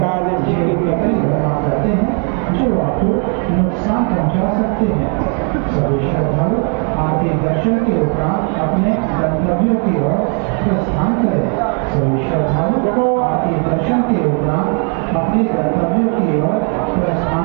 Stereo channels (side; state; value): left; quieter; 39.3 dB